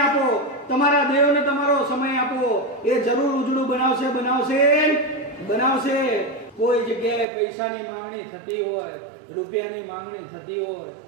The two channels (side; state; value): left; drops out; at 7.2 s